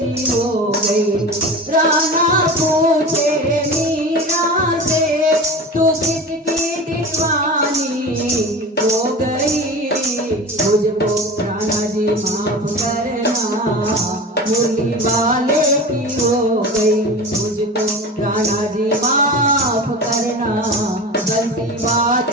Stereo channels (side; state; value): both; normal; correlation 0.32